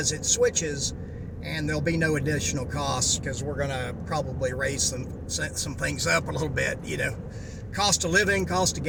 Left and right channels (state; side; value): identical; both; correlation 1.00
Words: it switches, and there'll be no additional costs because we're going to probably raise some things up a little bit, cost of living, cost of